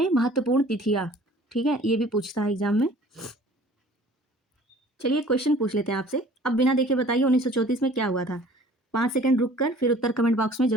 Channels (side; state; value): both; normal; correlation 0.50